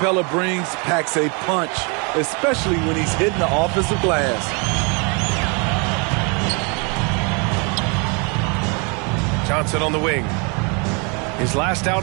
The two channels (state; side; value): quieter; left; 33.3 dB